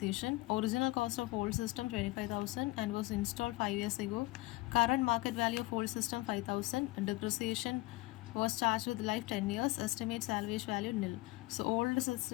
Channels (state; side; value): quieter; right; 21.1 dB